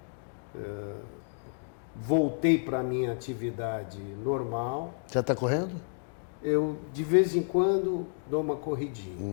Voltei para a minha atividade normal. Já está correndo? Eu, de vez em quando, dou uma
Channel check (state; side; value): silent; right; digital silence